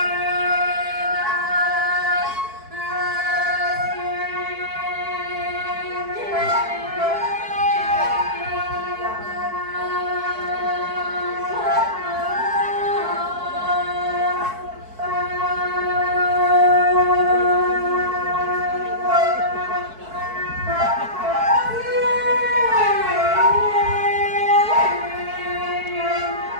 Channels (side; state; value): left; late; 4.6 ms